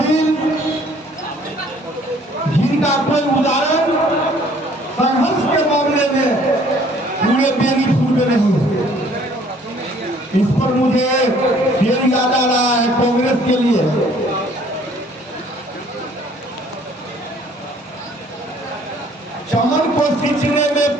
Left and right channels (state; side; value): normal; both; correlation 0.58